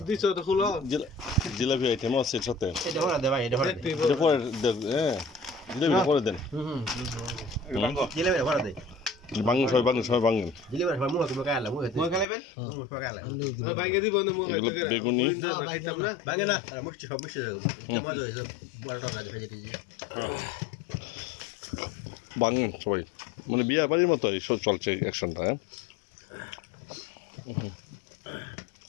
জিলাপি আইটেম আছে এর সাথে, এটা পরে হ্যাঁ জিলাপিটা করে দেন। ভাঙেন সবাই, ভাঙেন সবাই, ভাঙেন। বেগুনি ভাঙেন সবাই, মানে বিয়ে বাড়ির মতো এইসব চলছে অ্যাকশনটা। হ্যাঁ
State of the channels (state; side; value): drops out; right; at 12.2 s